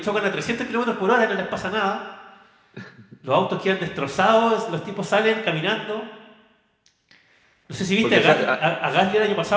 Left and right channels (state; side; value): identical; both; correlation 1.00